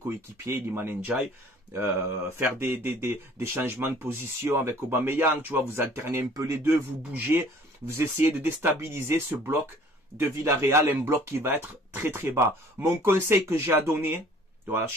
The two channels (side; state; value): both; normal; correlation 0.52